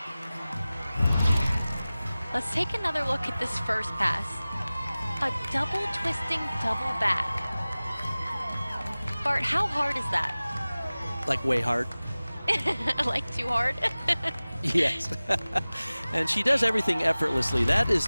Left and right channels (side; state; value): both; inverted; correlation -0.98